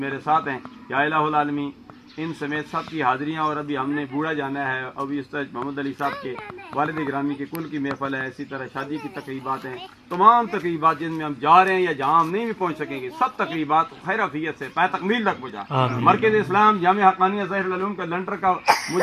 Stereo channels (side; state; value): both; identical; correlation 1.00